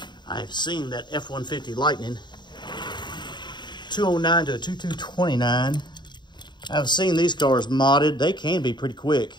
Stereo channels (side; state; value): right; late; 0.22 ms